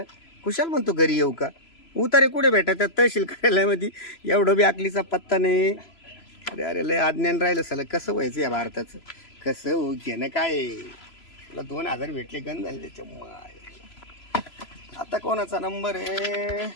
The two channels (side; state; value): right; late; 3.0 ms